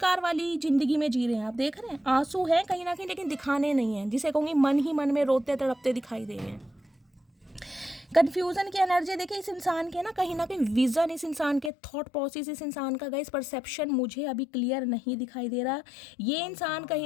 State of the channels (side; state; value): right; drops out; at 11.7 s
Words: वाली जिंदगी में जी रहे हैं। आप देख रहे हैं आंसू हैं कहीं ना कहीं, लेकिन दिखाने नहीं है, जिसे कहूँगी मन ही मन में रोते तड़पते दिखाई दे रहे हैं। कन्फ्यूज़न की एनर्जी देखिए इस इंसान के ना कहीं विज़न, इस इंसान के थॉट प्रोसेस, इस इंसान का गाइस परसेप्शन मुझे अभी क्लियर नहीं दिखाई दे रहा। ये इंसान